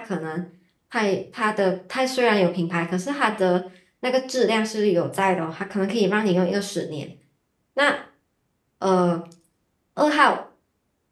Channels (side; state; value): both; identical; correlation 1.00